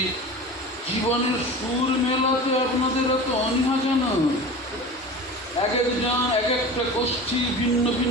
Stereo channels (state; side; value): normal; both; correlation 0.34